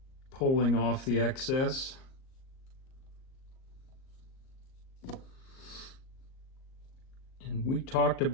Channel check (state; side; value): late; right; 38 ms